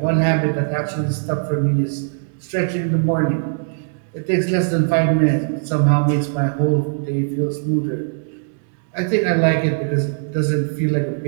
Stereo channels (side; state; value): left; silent; digital silence